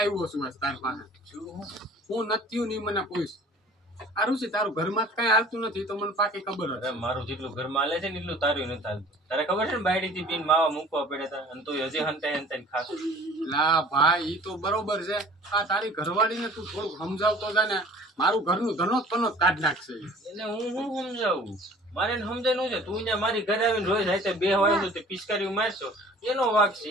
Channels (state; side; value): normal; both; correlation 0.47